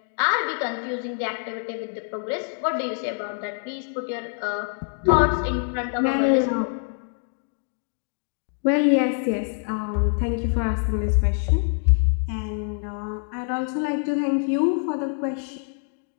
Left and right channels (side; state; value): right; silent; 57 dB below the other